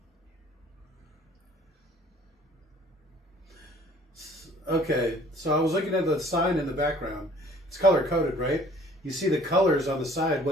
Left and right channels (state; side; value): normal; both; correlation 0.54